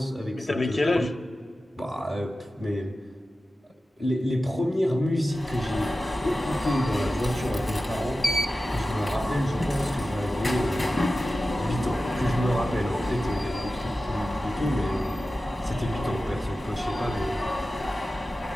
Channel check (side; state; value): both; normal; correlation 0.94